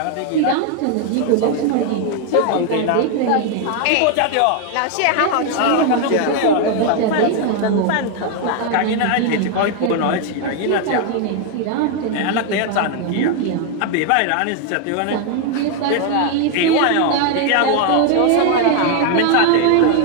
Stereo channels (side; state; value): both; different; correlation 0.00